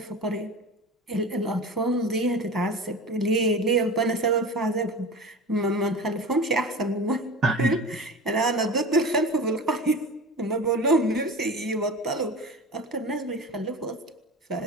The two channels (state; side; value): normal; both; correlation 0.32